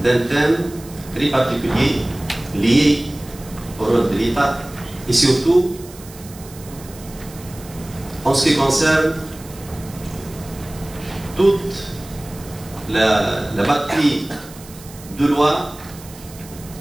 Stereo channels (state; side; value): noise; right; hiss, 19 dB below the sound